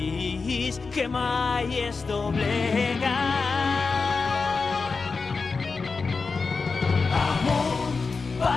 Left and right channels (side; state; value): right; quieter; 4.5 dB